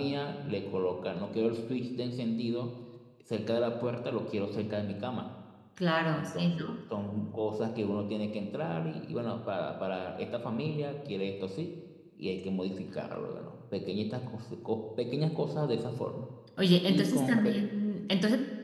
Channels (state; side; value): identical; both; correlation 1.00